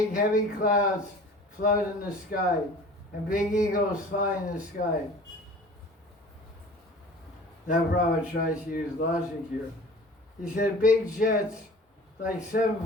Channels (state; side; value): normal; both; correlation 0.43